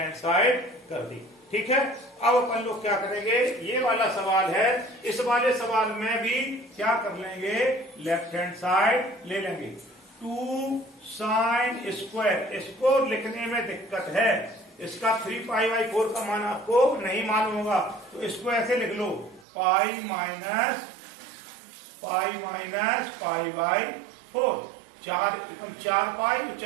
साइड कर दी। ठीक है, अब अपन लोग क्या करेंगे, ये वाला सवाल है, इस वाले सवाल में भी क्या कर लेंगे, लेफ्ट हैंड साइड ले लेंगे। 2 साइन स्क्वायर, इसको लिखने में दिक्कत है, इसका 3π/4 का मान आपको नहीं मालूम होगा, तो इसको ऐसे लिख लो, पाई माइनस π/4 4 पाई,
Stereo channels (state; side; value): drops out; left; at 19.5 s